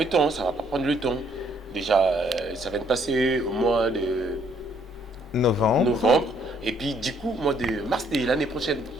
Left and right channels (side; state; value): both; normal; correlation 0.67